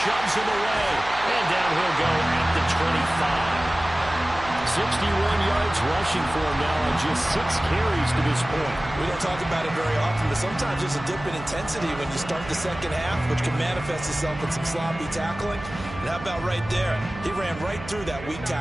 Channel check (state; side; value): noise; right; hum, 13 dB below the sound